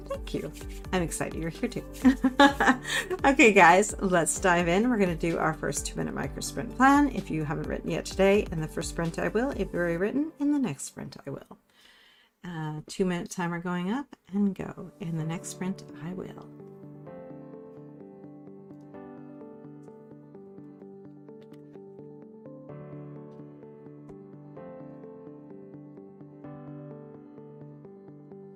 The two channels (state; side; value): identical; both; correlation 1.00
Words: you. I'm excited you're here too. Okay, guys, let's dive in. We're going to do our first 2-minute micro sprint plan. If you haven't written yet today, in the first sprint I will. If you've already written, in the next sprint I will. 2-minute timer going up and go. In the next sprint I will.